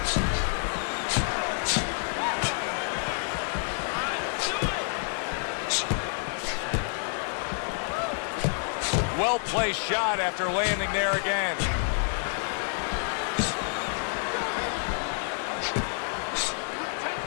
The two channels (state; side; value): silent; right; 59 dB below the other